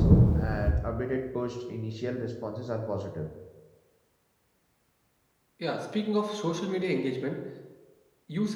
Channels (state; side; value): identical; both; correlation 1.00